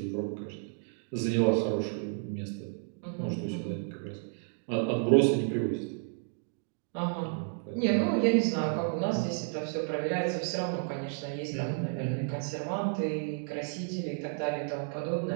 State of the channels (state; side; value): silent; left; 57 dB below the other